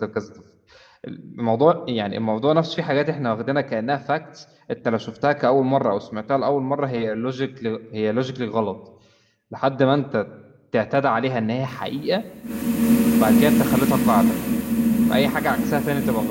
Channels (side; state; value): both; identical; correlation 1.00